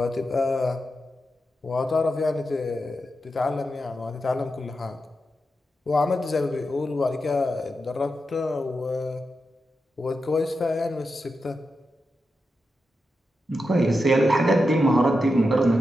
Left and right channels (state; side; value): normal; both; correlation 0.88